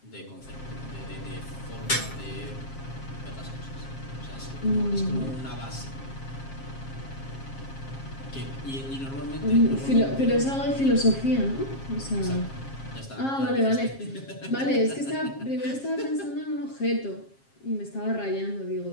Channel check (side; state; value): right; late; 7.4 ms